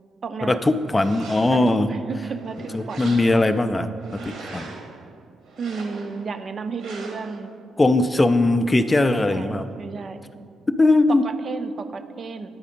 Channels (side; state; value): both; normal; correlation 0.90